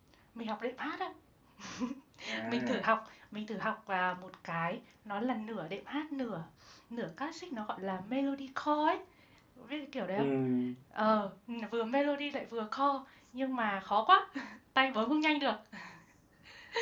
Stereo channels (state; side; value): identical; both; correlation 1.00